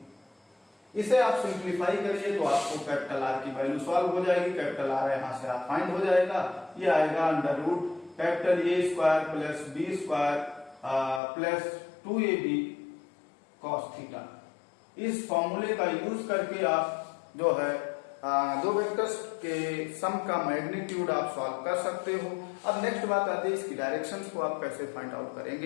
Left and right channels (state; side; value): drops out; right; at 11.2 s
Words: इसे आप सिंप्लीफाई करिए तो आपको कैपिटल आर की वैल्यू सॉल्व हो जाएगी। कैपिटल आर यहां से आप फाइंड हो जाएगा, ये आएगा under root capital A square plus B square plus 2ab cos theta. इस फॉर्मूले का यूज करके आप जो है दो वेक्टर्स के सम का मैग्नीट्यूड आप सॉल्व कर सकते हो। अब नेक्स्ट बात आती है इसकी डायरेक्शंस को आप कैसे फाइंड आउट